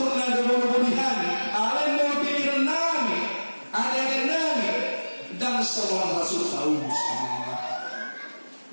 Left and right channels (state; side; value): inverted; both; correlation -1.00